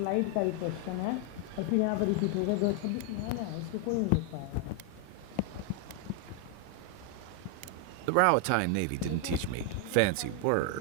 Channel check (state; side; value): different; both; correlation 0.00